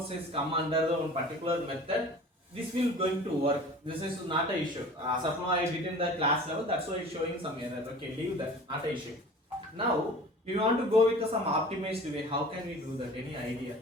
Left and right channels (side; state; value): both; normal; correlation 0.42